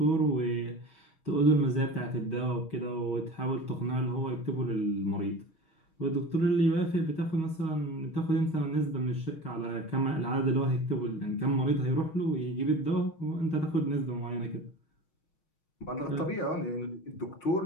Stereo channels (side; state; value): right; late; 6.4 ms